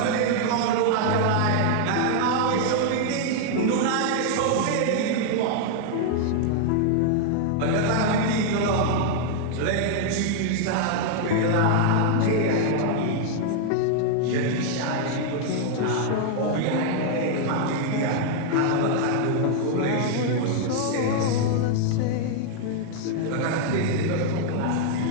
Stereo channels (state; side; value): different; both; correlation 0.00